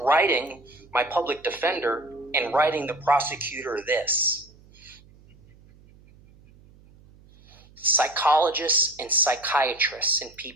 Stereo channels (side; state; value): right; noise; hum, 26 dB below the sound